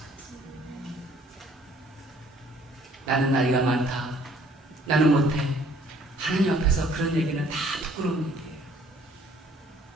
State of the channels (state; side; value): normal; both; correlation 0.59